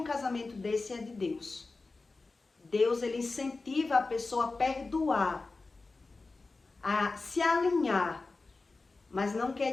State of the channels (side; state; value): right; quieter; 3.7 dB